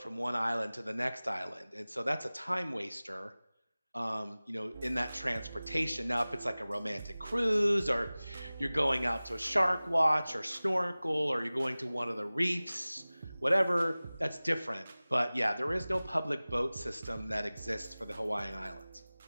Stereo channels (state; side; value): inverted; both; correlation -0.98